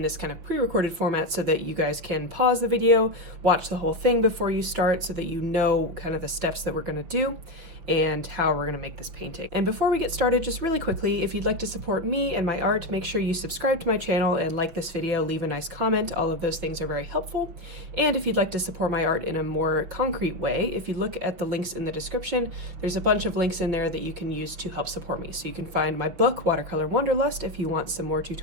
this kind of pre-recorded format so that you guys can pause the video, watch the whole thing before you start so that you know kind of the steps that we're going to do and how we're going to make this painting. And before we get started, just really quickly, if you'd like to support me and my art, make sure you subscribe to my channel and like this video, leave a nice comment. All of those things are very helpful. And if you'd like to support my art in a more concrete way, if you look at the links in the description, there's a bunch of links in there that you can use to help support me. So you can find my book, Watercolor Wanderlust, if you want some more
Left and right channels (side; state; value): left; late; 5.9 ms